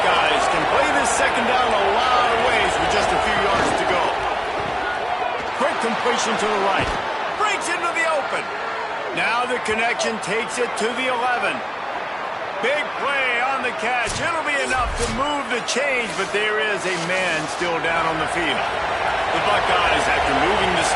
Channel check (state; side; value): identical; both; correlation 1.00